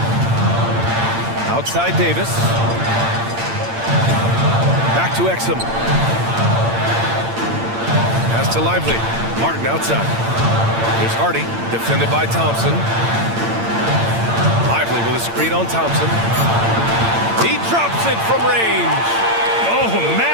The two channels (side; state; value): left; late; 8.8 ms